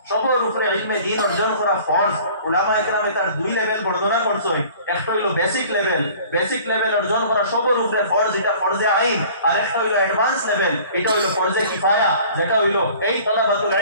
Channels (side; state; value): both; inverted; correlation -0.49